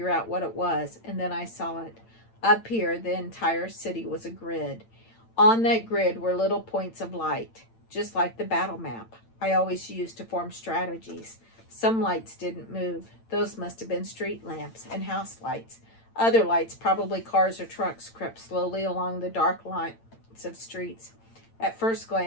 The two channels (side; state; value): right; late; 8.9 ms